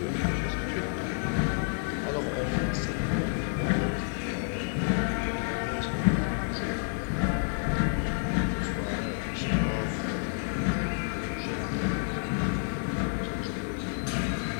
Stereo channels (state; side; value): silent; right; 58 dB below the other